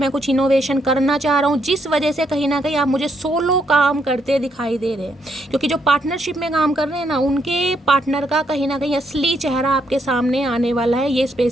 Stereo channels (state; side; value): normal; both; correlation 0.75